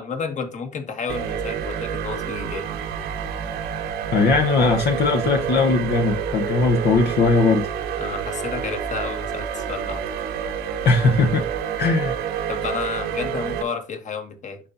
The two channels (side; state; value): both; normal; correlation 0.44